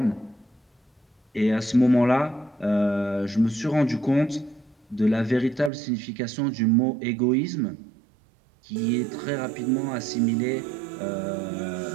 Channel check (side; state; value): left; drops out; at 5.7 s